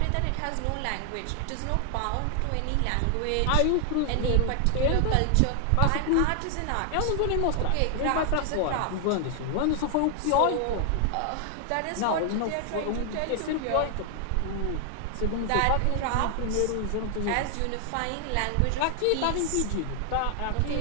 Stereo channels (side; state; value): both; different; correlation 0.00